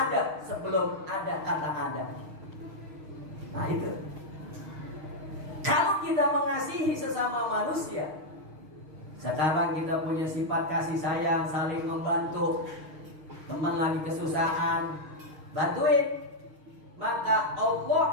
sebelum ada kata ada. Nah itu. Kalau kita mengasihi sesama manusia, sekarang kita punya sifat kasih sayang, saling membantu. Teman lagi kesusahan, bantuin. Maka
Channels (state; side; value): late; left; 6.4 ms